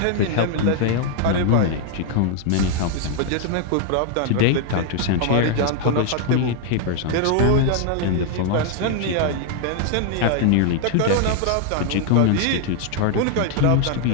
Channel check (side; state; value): both; different; correlation 0.00